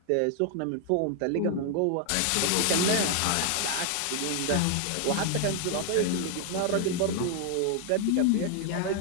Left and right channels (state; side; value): different; both; correlation 0.00